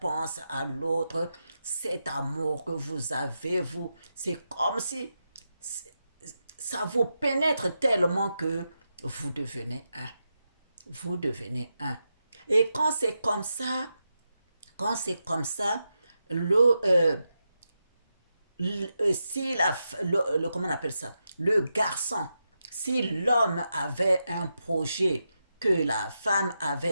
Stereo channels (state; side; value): inverted; both; correlation -0.87